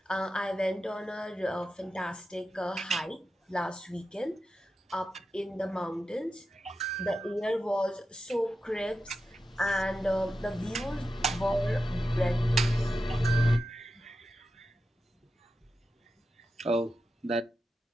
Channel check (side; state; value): both; normal; correlation 0.91